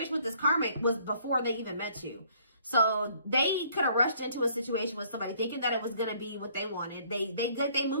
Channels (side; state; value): both; inverted; correlation -0.62